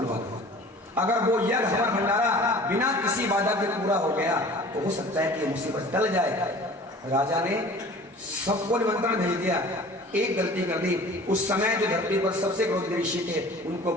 दो। अगर वो यज्ञ हवन भंडारा बिना किसी बाधा के पूरा हो गया तो हो सकता है कि ये मुसीबत टल जाए। राजा ने सबको निमंत्रण भेज दिया, एक गलती कर दी। उस समय जो धरती पर सबसे क्रोधी ऋषि थे उनको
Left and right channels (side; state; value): both; normal; correlation 0.45